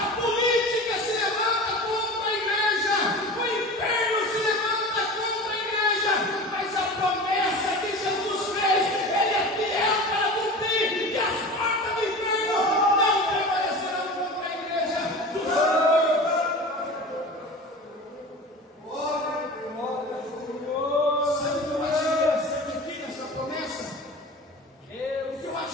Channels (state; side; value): normal; both; correlation 0.34